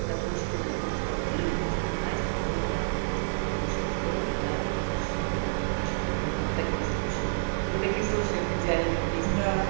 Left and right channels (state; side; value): silent; left; digital silence